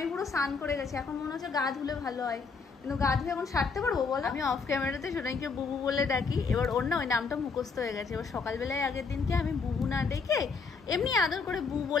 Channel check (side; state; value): right; quieter; 4.9 dB